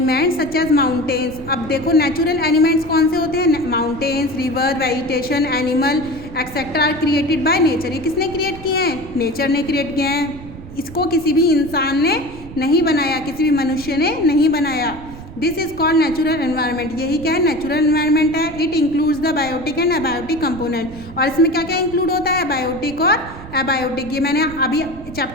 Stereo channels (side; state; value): right; noise; rumble, 15 dB below the sound